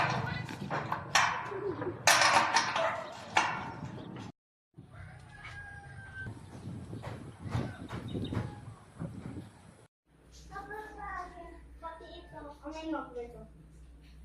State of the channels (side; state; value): both; identical; correlation 1.00